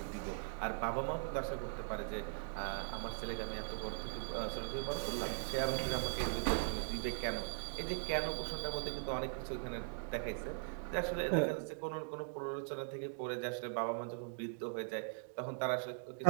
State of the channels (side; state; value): left; silent; digital silence